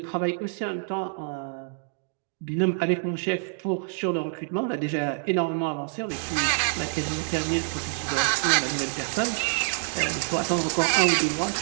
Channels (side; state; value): left; silent; digital silence